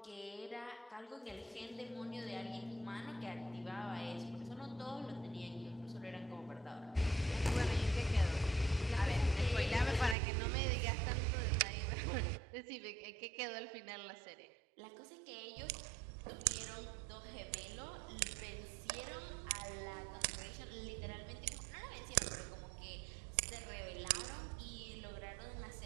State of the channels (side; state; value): left; drops out; at 10.2 s